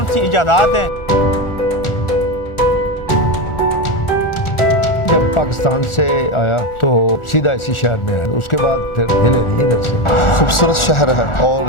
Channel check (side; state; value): right; late; 1.4 ms